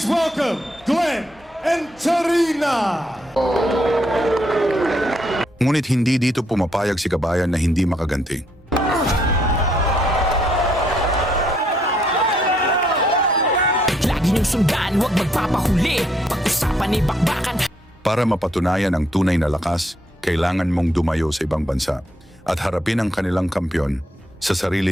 welcome Glenn and Tarina. Ngunit hindi dito pumapayag si Kabayan na hindi makaganti. Lagi niyong sundan, huwag magpapahuli. Pag-usapan ay bakbakan. Para mapatunayan ang tunay na lakas, kailangan mong dumayo sa ibang bansa at harapin ang kanilang kampyon sa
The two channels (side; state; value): both; normal; correlation 0.72